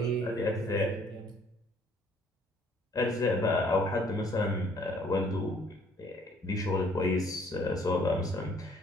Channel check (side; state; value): both; normal; correlation 0.61